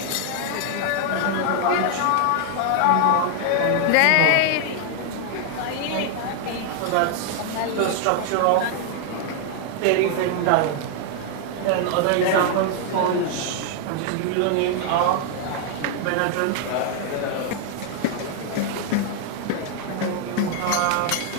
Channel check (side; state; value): both; different; correlation 0.00